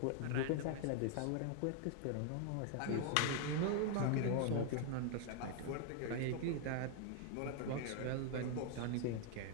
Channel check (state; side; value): different; both; correlation 0.00